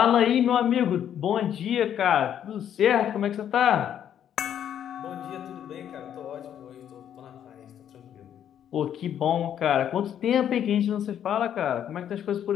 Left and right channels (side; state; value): right; quieter; 9.8 dB